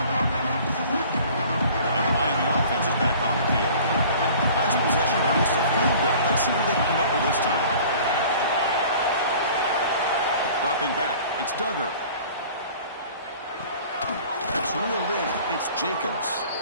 And the Miami offense is back on the field. It's Duggar. That's reeled in. It's Jacobs.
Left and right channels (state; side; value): inverted; both; correlation -0.47